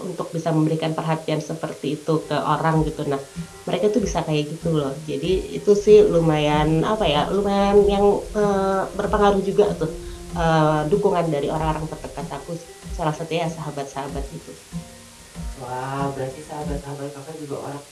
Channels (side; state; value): both; identical; correlation 1.00